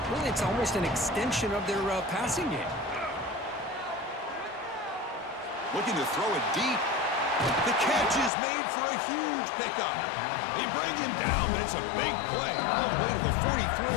Really, it's almost an extension of their passing game. Looking to throw it deep. The catch is made for a huge pickup. They bring him down, but it's a big play all the way to the 43.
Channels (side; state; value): right; drops out; at 8.3 s